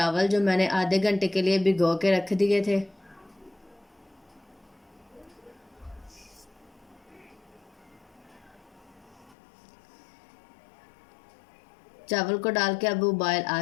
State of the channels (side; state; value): right; drops out; at 9.3 s